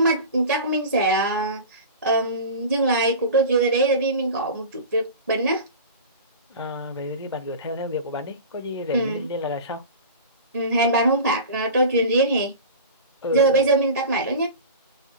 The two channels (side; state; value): both; inverted; correlation -0.34